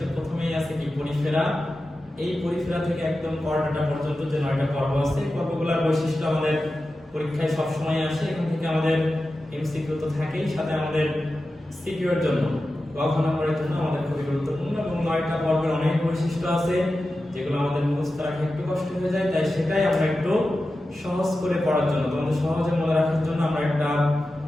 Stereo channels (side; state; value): both; normal; correlation 0.93